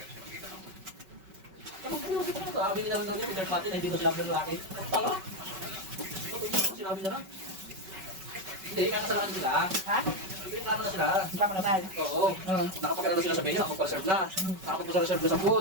sabi nila naman yung third party na hindi ko sinabi ng lalaki. Tanga? Sinabi na lang. Hindi, kakasalanan sila. Ha? Reklamo na sila. Hindi pa ako nasal. Oo. Nakapagkala na sila sa menu, nakapag-serve na. Nakapag-serve na sa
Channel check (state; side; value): late; left; 5.3 ms